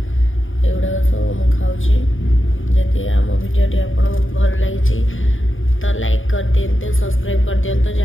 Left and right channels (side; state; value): right; late; 0.58 ms